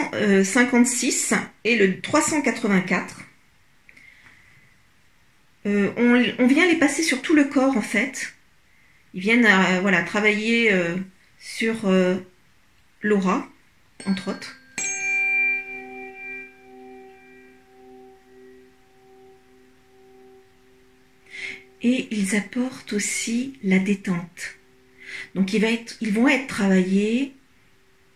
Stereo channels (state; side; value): identical; both; correlation 1.00